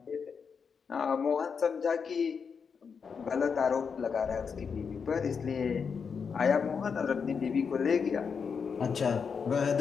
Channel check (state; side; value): quieter; right; 6.0 dB